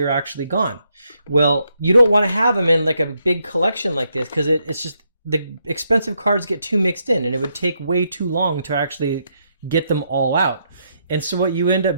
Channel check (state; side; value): inverted; both; correlation -0.78